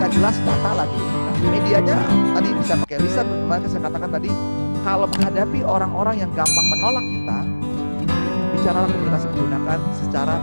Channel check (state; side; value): inverted; both; correlation -1.00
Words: jelas, data lagi. Nah, medianya tadi bisa pakai lisan, bagaimana saya katakan tadi, kalau menghadapi orang-orang yang gampang menolak kita, bicaralah komunikasi menggunakan secara